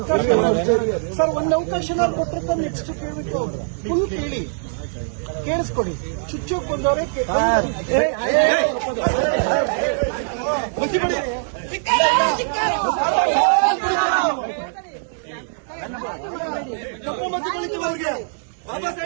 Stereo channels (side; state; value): left; silent; digital silence